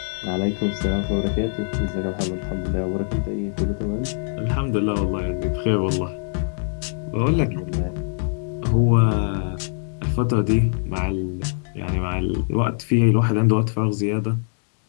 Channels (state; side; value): silent; right; digital silence